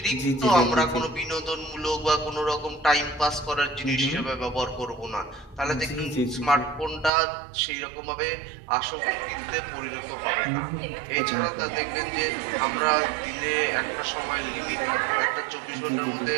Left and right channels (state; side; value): drops out; left; at 7.1 s